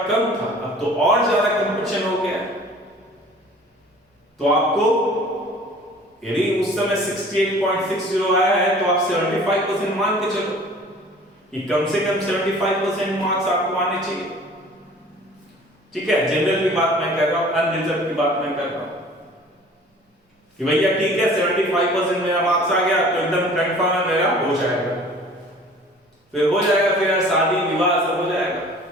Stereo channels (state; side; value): normal; both; correlation 0.48